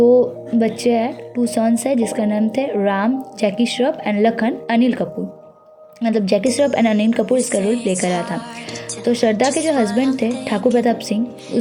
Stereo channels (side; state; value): both; identical; correlation 1.00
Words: बच्चे हैं, 2 सन्स है जिसका नाम थे राम जैकी श्रॉफ एंड लखन अनिल कपूर। मतलब जैकी श्रॉफ एंड अनिल कपूर इसका रोल प्ले कर रहा था। तो श्रद्धा के जो हस्बैंड थे ठाकुर प्रताप सिंह,